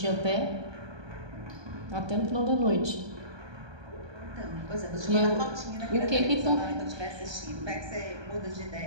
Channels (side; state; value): left; late; 1.2 ms